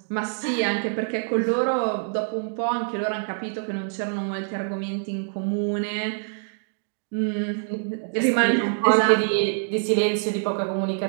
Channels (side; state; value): left; silent; 62 dB below the other